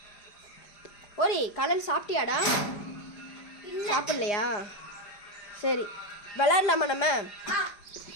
ஓரி காலையில் சாப்பிட்டியாடா? சாப்பிட்லையா? சரி விளாட்லாமா நம்ம?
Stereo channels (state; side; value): late; right; 4.9 ms